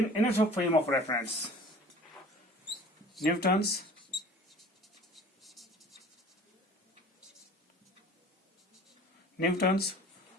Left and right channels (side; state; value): both; normal; correlation 0.46